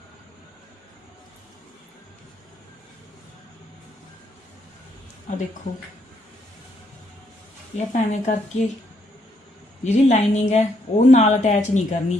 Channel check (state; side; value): normal; both; correlation 0.73